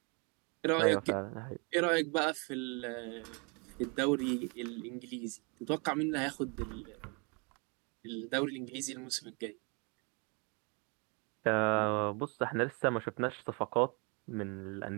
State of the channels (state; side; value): quieter; left; 33.2 dB